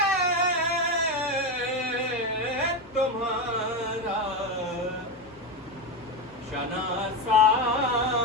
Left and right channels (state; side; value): normal; both; correlation 0.13